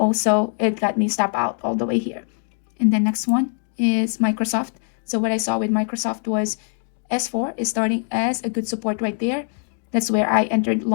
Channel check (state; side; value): silent; right; 64 dB below the other